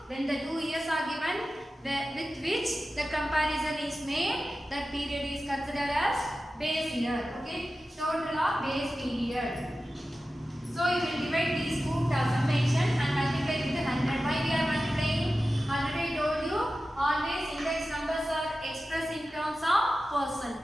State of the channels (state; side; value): normal; both; correlation 0.94